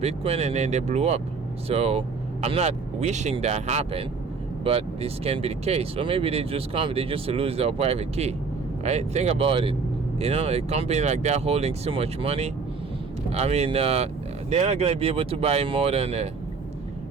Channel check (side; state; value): left; quieter; 4.7 dB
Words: and then they blew up. So I'm not wishing that happen, but this can be the case. Or maybe they just lose their private key, right? Think about it. You know, a company like that holding so much money, I mean, they're not going to be able to buy more than